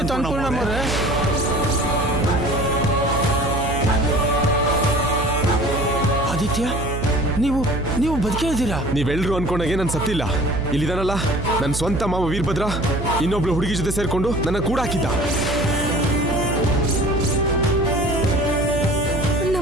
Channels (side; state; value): right; noise; hum, 4 dB below the sound